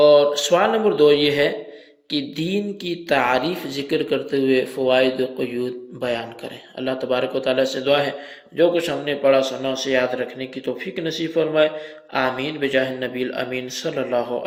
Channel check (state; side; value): identical; both; correlation 1.00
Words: سوال نمبر 2 یہ ہے کہ دین کی تعریف ذکر کرتے ہوئے فوائد و قیود بیان کریں۔ اللہ تبارک و تعالیٰ سے دعا ہے جو کچھ ہم نے پڑھا سنا اسے یاد رکھنے کی توفیق نصیب فرمائے، آمین بجاہ النبی الامین صلی اللہ